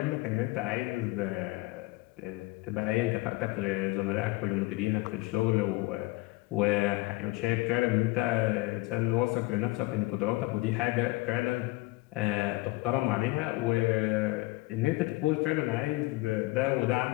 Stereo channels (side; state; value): right; quieter; 20.9 dB